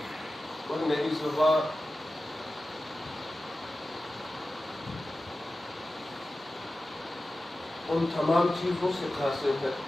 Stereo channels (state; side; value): normal; both; correlation 0.94